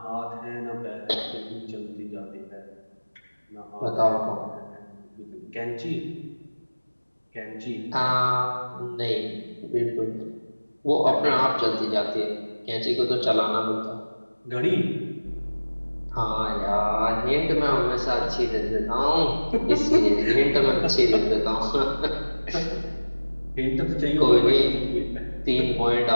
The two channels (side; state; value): both; inverted; correlation -1.00